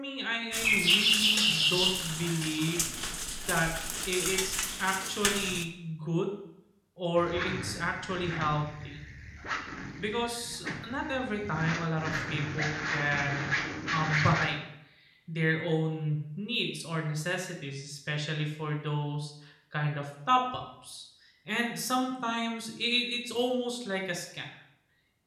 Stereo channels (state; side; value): identical; both; correlation 1.00